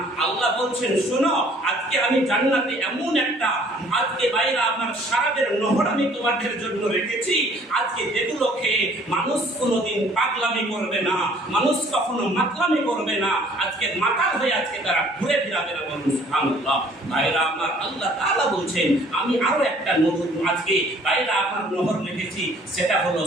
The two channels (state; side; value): normal; both; correlation 0.57